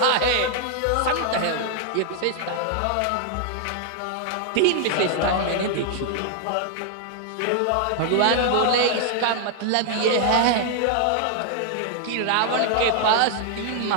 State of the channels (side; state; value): both; different; correlation 0.00